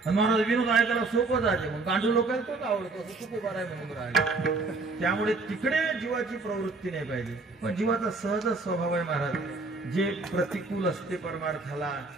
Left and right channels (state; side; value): quieter; left; 3.6 dB